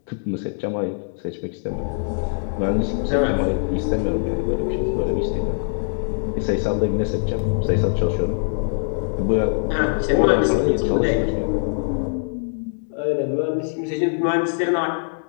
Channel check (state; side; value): silent; right; digital silence